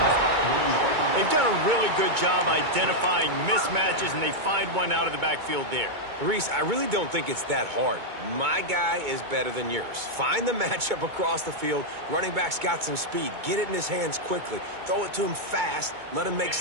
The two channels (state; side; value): late; left; 2.2 ms